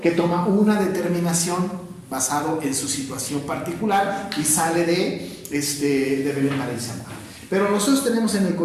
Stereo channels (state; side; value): identical; both; correlation 1.00